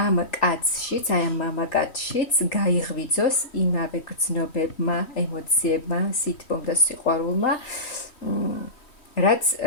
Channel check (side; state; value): right; late; 3.1 ms